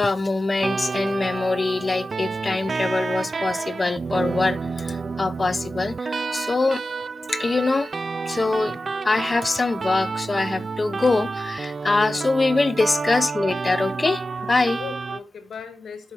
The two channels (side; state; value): both; normal; correlation 0.94